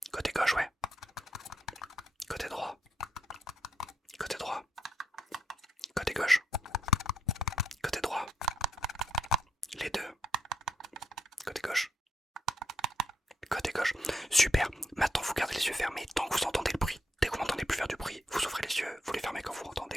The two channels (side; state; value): both; normal; correlation 0.79